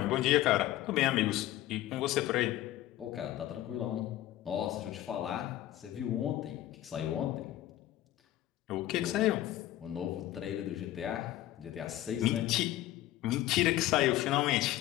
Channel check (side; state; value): right; quieter; 14.3 dB